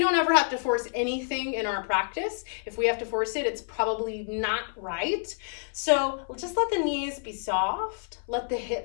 ever have to force anything in our practice. If we have to force it, it's probably not right. So just let the knees be soft. Let the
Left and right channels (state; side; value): silent; right; 59 dB below the other